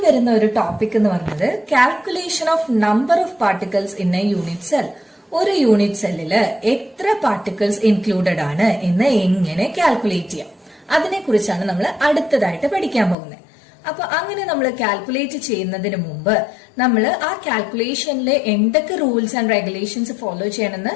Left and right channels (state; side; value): drops out; right; at 13.2 s